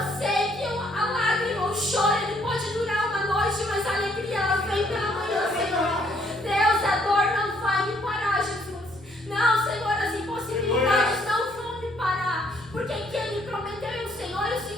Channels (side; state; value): both; normal; correlation 0.67